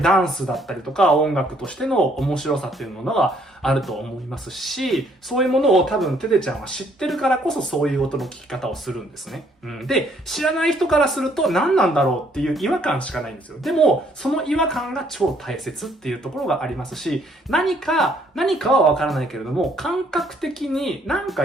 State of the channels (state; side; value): normal; both; correlation 0.66